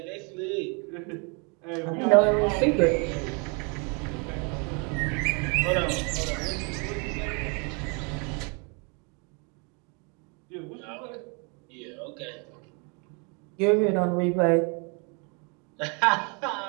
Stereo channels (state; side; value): quieter; left; 34.0 dB